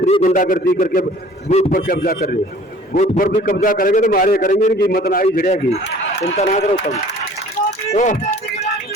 नहीं गुंडागर्दी करके बूथ पर कब्जा कर ले, बूथ पर भी कब्जा करेंगे तो मारे करेंगे, इनकी हिम्मत ना ही झड़ेगी, चिंता ना करो तुम।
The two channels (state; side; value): normal; both; correlation 0.50